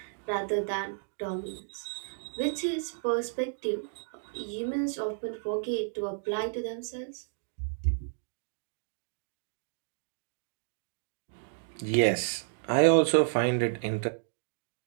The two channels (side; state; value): left; silent; digital silence